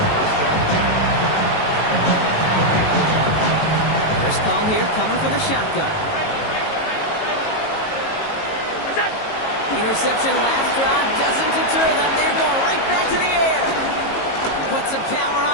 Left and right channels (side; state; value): right; late; 18 ms